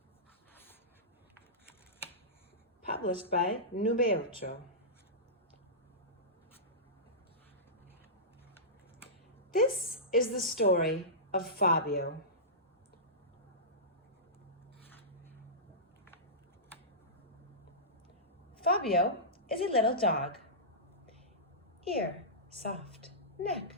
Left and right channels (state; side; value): normal; both; correlation -0.18